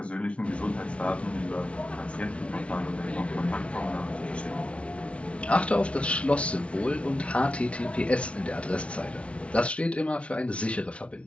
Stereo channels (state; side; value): late; right; 0.061 ms